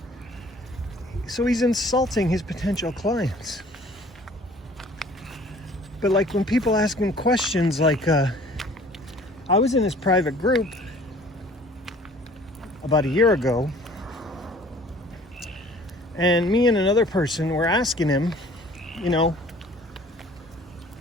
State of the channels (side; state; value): both; normal; correlation 0.52